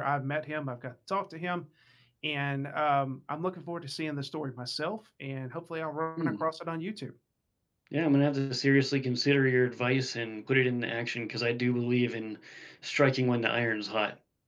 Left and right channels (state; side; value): identical; both; correlation 1.00